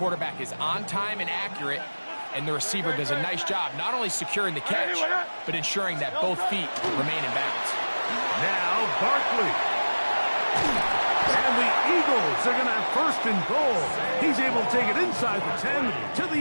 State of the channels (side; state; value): both; inverted; correlation -1.00